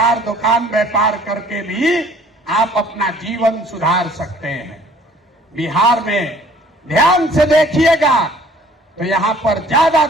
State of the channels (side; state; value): both; normal; correlation 0.55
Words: दुकान व्यापार करके भी आप अपना जीवन सुधार सकते हैं। बिहार में ध्यान से देखिएगा तो यहां पर